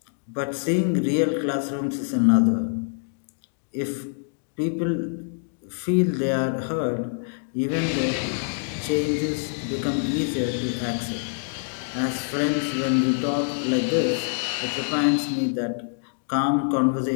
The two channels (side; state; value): right; silent; digital silence